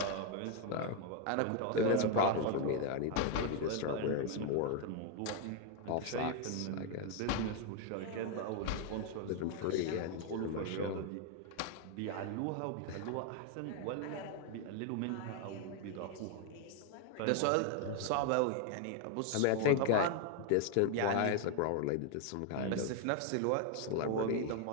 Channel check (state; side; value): different; both; correlation 0.01